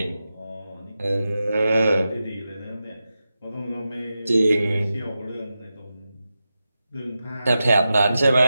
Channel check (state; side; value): inverted; both; correlation -0.92